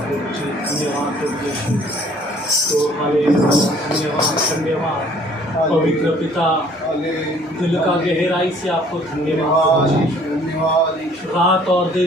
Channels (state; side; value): normal; both; correlation 0.57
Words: पवित्र पिता, दिल का गहराई से आपको धन्यवाद। रात और